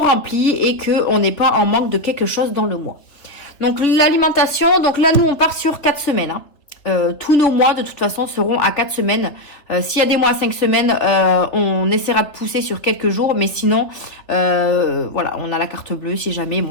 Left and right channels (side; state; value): right; late; 3.5 ms